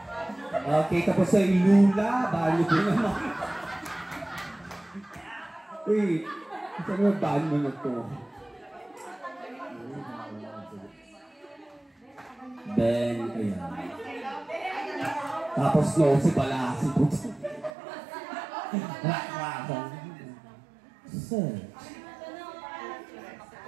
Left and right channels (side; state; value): left; drops out; at 17.7 s